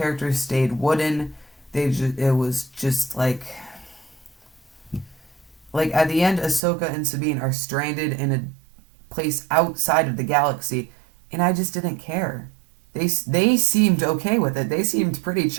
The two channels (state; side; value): drops out; left; at 6.6 s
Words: stayed wooden. It was just like at the end, Ahsoka and Sabine are stranded in a place outside of the galaxy, and I just didn't care. They seemed okay with it. They seemed pretty